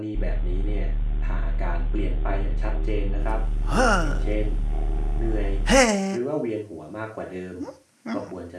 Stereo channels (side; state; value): both; identical; correlation 1.00